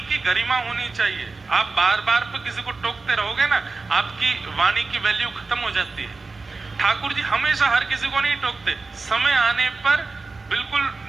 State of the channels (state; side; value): quieter; left; 3.9 dB